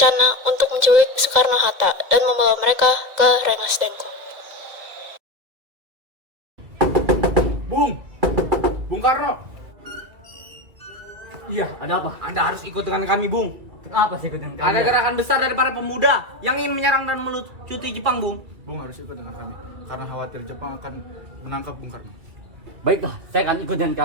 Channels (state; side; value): late; left; 2.3 ms